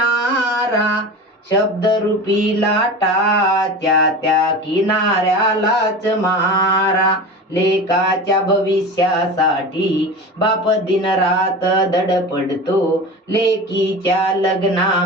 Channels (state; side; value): normal; both; correlation 0.31